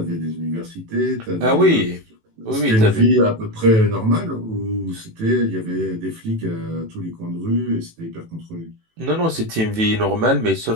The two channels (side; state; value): left; late; 18 ms